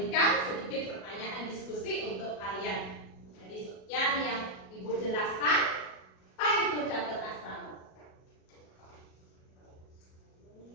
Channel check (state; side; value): late; right; 37 ms